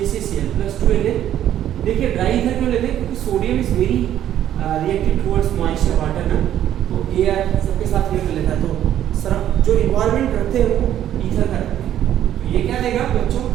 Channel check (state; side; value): quieter; left; 11.3 dB